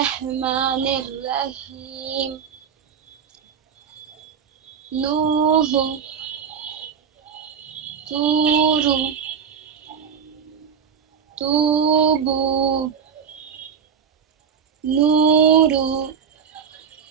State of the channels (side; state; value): left; quieter; 7.1 dB